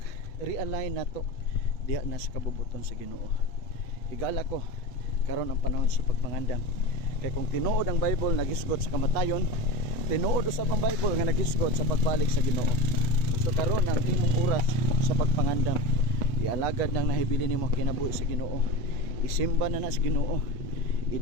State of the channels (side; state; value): right; late; 8.2 ms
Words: nato diha na sa kabubuton sa Ginoo. Higala ko karon ang panahon sa pagpangandam. Kay kung tinuod ang Bible nagisgot sa kamatayon, tinuod usab ang Bible nga nagisgot sa pagbalik sa Ginoo. So karon ang imong oras sa pagpangandam, ialagad nang nahibili nimo kinabuhi sa Ginoo. Isimba na sa Ginoo.